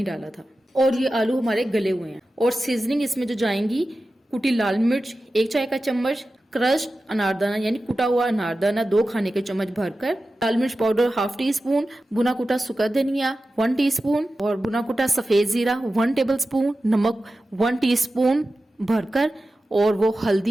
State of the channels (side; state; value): both; normal; correlation 0.94